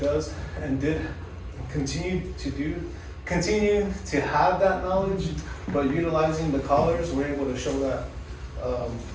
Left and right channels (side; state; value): both; identical; correlation 1.00